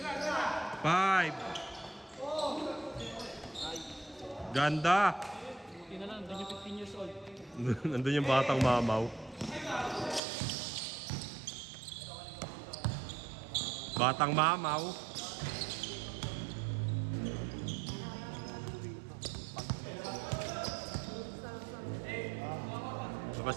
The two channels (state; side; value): drops out; left; at 10.2 s